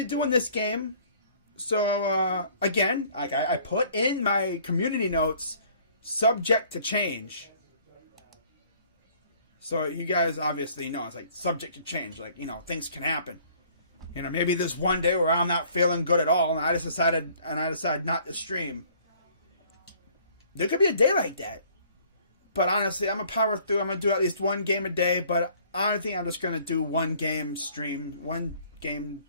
doing this game. So, again, I put in my community notes, subject to change. So you guys obviously know it's like subject to change. Like, things can happen. Maybe there's one day where I'm not feeling good at all and I decide not to stream. There could be a day like that. But honestly, I'm going to power through. I'm going to do at least one game a day. But I think I'm just going to do one game stream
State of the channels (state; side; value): inverted; both; correlation -0.56